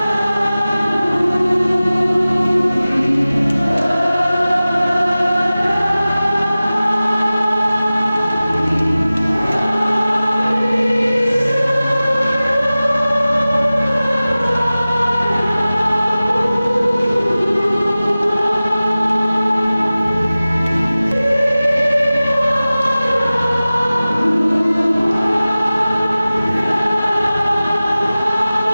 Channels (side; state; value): both; inverted; correlation -0.97